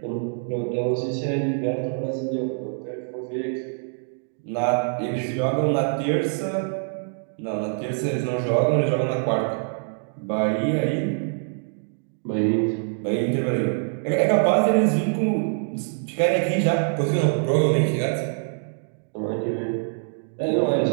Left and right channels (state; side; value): silent; left; digital silence